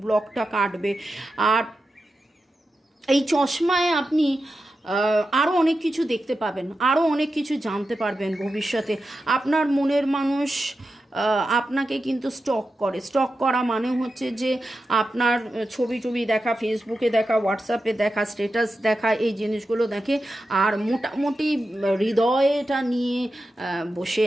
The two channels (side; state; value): both; normal; correlation 0.90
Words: ব্লকটা কাটবে। আর এই চশমায় আপনি আরও অনেক কিছু দেখতে পাবেন, আরও অনেক কিছু জানতে পারবেন ভবিষ্যতে। আপনার মনের মানুষ আপনাকে কিন্তু স্টক করে। স্টক করা মানে হচ্ছে যে আপনার ছবি টবি দেখা, ফেসবুকে দেখা, হোয়াটসঅ্যাপে দেখা, স্ট্যাটাস দেখা, এই জিনিসগুলো দেখে আর মোটামুটি হৃদয়টা নিয়ে বসে